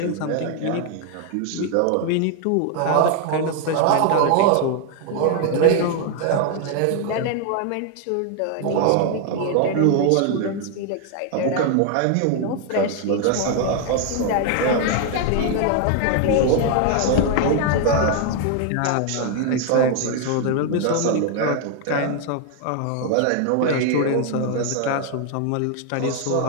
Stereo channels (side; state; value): both; different; correlation 0.00